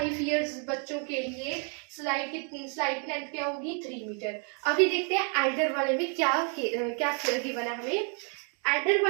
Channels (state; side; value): quieter; left; 39.5 dB